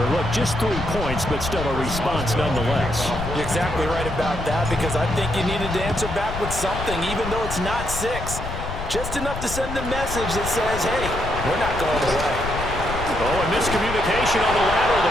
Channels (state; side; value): noise; left; rumble, 7 dB below the sound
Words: Look, just 3 points, but still a response nonetheless. You're exactly right about that because I think you needed to answer back with something, even though it's not 6. Just enough to send a message that says, hey, we're not going away. Oh, and miscommunication on the lateral. The